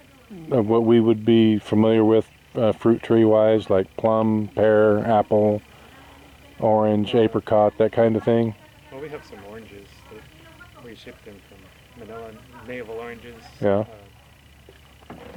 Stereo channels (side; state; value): both; identical; correlation 1.00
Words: would be familiar with fruit tree wise, like plum, pear, apple, orange, apricot, that kind of thing? Well, we have some oranges that we shipped in from Manila, navel oranges. Yeah.